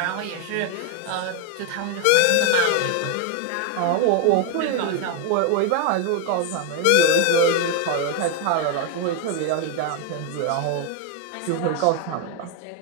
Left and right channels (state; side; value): different; both; correlation 0.01